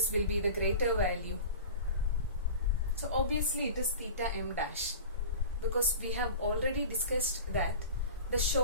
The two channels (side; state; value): both; inverted; correlation -0.36